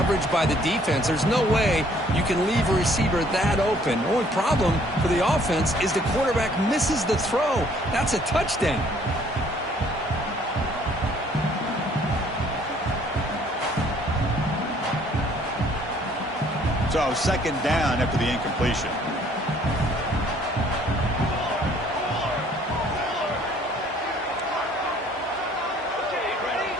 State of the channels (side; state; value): both; normal; correlation 0.60